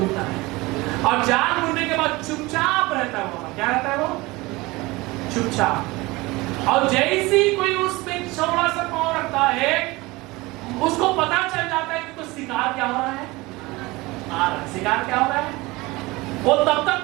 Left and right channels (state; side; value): quieter; left; 21.9 dB